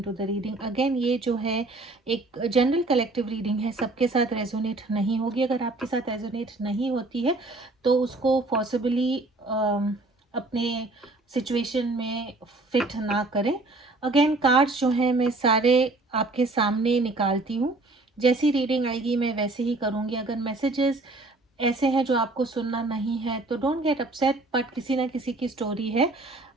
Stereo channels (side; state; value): left; quieter; 3.0 dB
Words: the reading again. ये जो है एक जनरल कलेक्टिव रीडिंग है, सबके साथ रेजोनेट नहीं होगी। अगर आपके साथ रेजोनेट नहीं होती है तो उसको पॉसिबली अपने सिचुएशन में फिट ना करें। अगेन कार्ड्स जो हैं मैं सारे आपके सामने निकालती हूँ, जैसी रीडिंग आएगी मैं वैसे ही करूँगी। अगर मैसेजेस ऐसे हैं जो आपको सुनना नहीं है तो डोंट गेट अपसेट, बट किसी ना किसी की स्टोरी है।